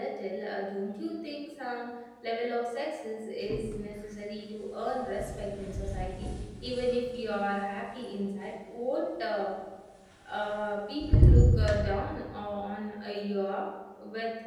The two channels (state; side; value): identical; both; correlation 1.00